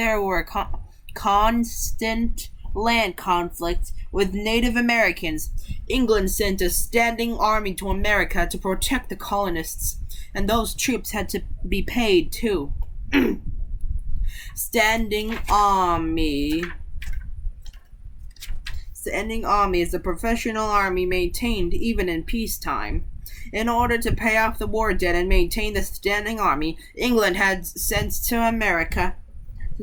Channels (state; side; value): identical; both; correlation 1.00